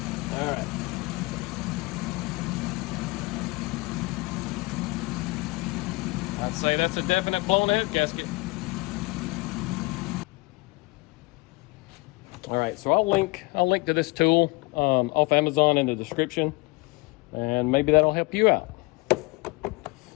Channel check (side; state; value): right; quieter; 24.6 dB